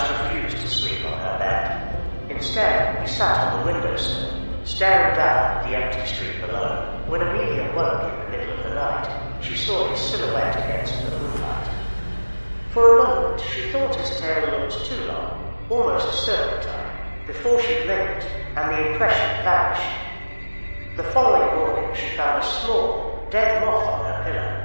refused to sleep on her bed. Instead, he sat on the windowsill, staring down at the empty street below. When Amelia woke in the middle of the night, she saw his silhouette against the moonlight. For a moment, she thought his tail looked too long, almost a serpentine, before she blinked, and the impression vanished. The following morning, she found a small, dead moth on her pillow,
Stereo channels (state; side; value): inverted; both; correlation -1.00